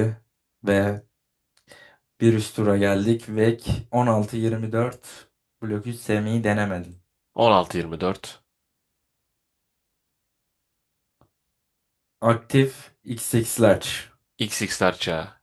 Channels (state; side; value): identical; both; correlation 1.00